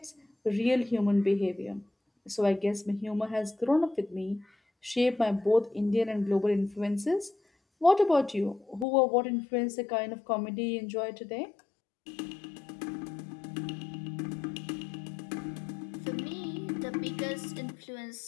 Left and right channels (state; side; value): drops out; right; at 8.8 s